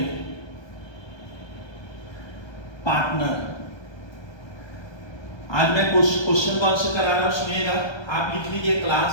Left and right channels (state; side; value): late; right; 1.2 ms